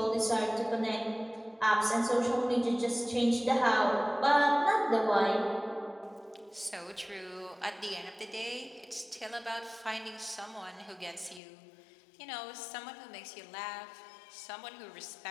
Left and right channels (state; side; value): drops out; right; at 11.4 s